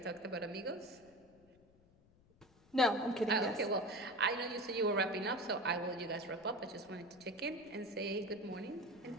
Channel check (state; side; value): noise; left; rumble, 29 dB below the sound